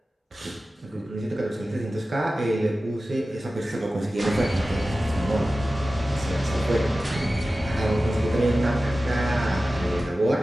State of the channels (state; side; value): normal; both; correlation 0.95